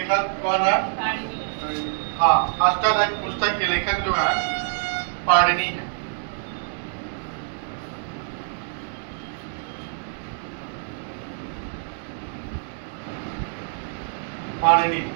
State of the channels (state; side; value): silent; left; digital silence